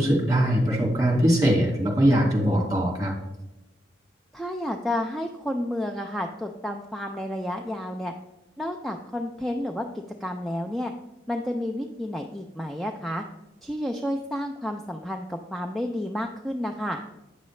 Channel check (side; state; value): both; normal; correlation 0.85